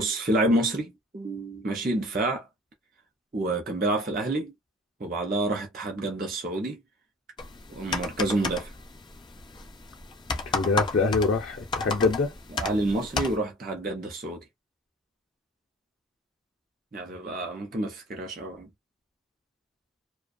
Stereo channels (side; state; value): both; normal; correlation 0.44